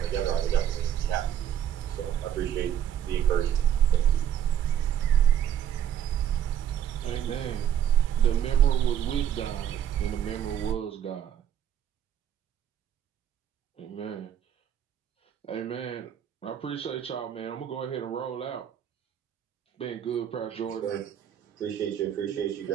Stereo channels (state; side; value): quieter; left; 10.0 dB